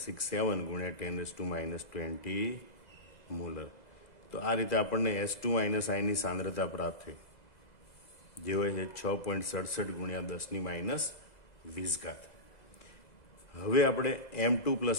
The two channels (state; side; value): late; right; 2.0 ms